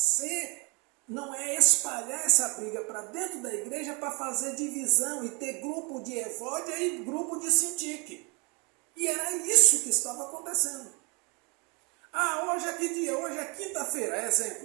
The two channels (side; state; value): left; quieter; 31.2 dB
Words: Não é espalhar essa briga para dentro da igreja para fazer divisão e ter grupo de Evódia e grupo de Sintique. E era isso que estava acontecendo. Hoje é que dia? Hoje é quinta-feira,